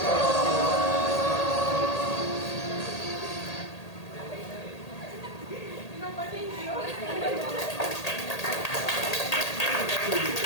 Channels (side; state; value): right; late; 1.8 ms